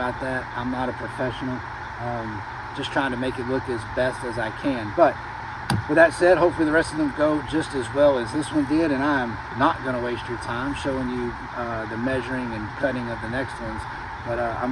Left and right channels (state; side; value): identical; both; correlation 1.00